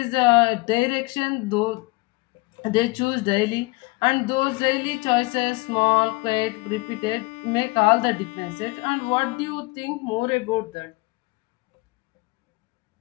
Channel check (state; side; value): quieter; right; 24.9 dB